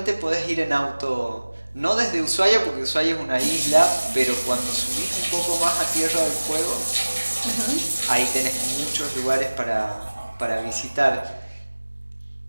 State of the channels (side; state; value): both; inverted; correlation -1.00